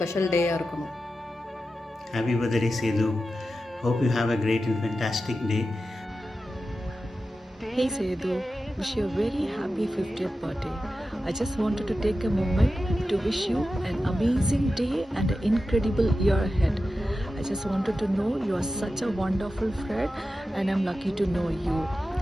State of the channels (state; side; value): normal; both; correlation 0.92